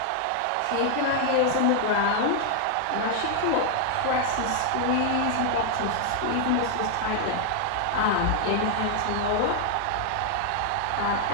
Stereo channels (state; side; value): different; both; correlation 0.00